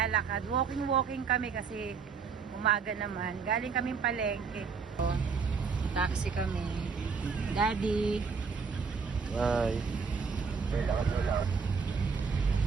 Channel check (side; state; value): left; quieter; 5.5 dB